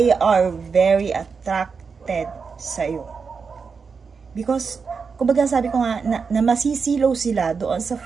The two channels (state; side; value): quieter; left; 5.4 dB